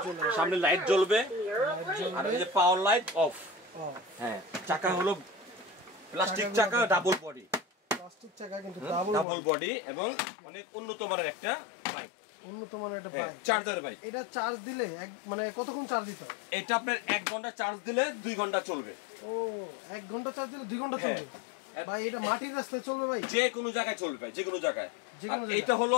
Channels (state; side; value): drops out; right; at 9.2 s